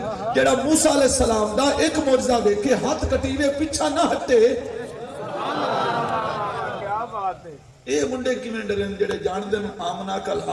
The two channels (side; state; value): both; identical; correlation 1.00